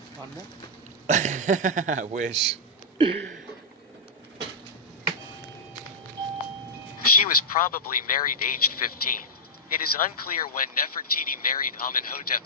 I wish. She was probably married aged 15. It is unclear when Nefertiti married Amenhotep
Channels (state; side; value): normal; both; correlation -0.08